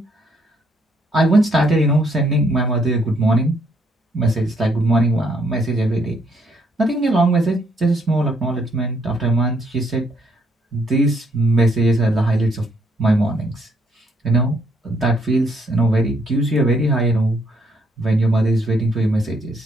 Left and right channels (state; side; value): normal; both; correlation 0.71